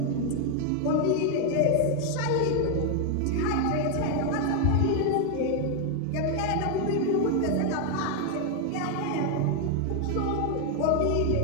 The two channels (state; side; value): different; both; correlation 0.01